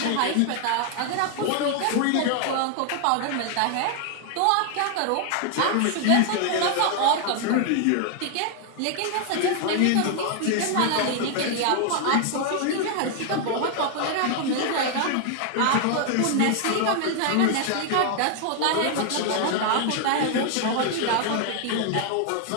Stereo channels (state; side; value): different; both; correlation 0.00